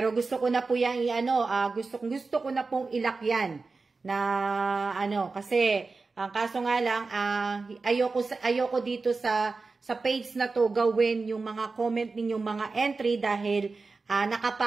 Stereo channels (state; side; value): quieter; left; 4.0 dB